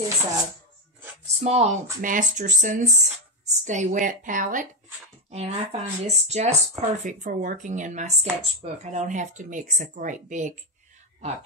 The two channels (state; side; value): normal; both; correlation 0.05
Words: a small Masterson's Stay Wet palette. And I find this just perfect for working in my sketchbook. I don't have to mix a great big